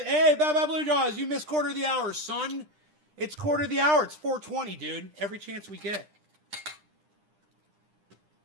Baba Blue Jaws, you missed quarter of the hour, son. It's quarter of the hour. It's 4:20, dude. Every chance we get.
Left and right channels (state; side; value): late; left; 9.9 ms